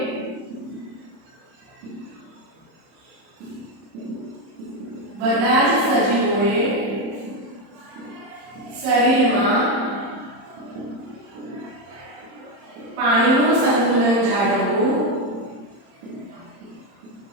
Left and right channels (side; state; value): left; late; 30 ms